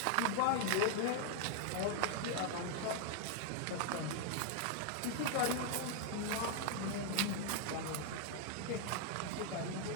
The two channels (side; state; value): both; different; correlation 0.00